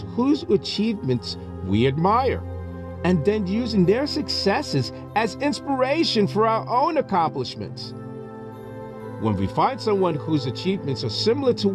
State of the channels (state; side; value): identical; both; correlation 1.00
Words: whose achievements we admire and then using their successes as inspiration for our own accomplishments. When we find someone whose achievements are similar to